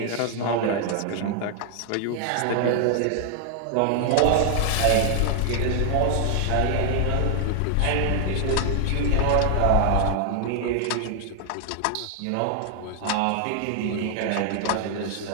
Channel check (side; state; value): both; different; correlation 0.00